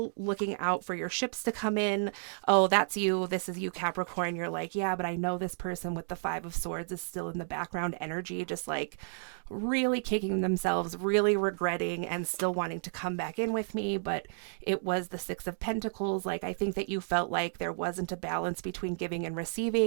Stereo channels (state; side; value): silent; left; digital silence